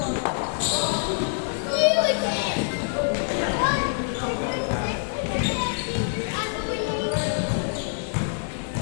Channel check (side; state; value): right; silent; digital silence